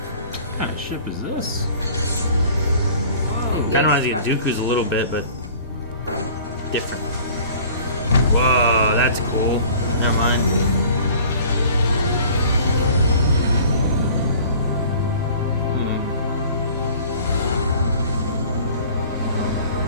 kind of ship is this? Kind of reminds me of Dooku's a little bit, but different. Whoa, that's cool. Never mind.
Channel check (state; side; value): inverted; both; correlation -0.47